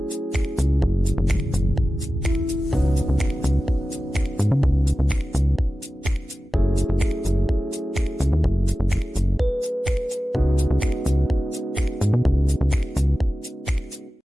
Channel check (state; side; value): normal; both; correlation 0.94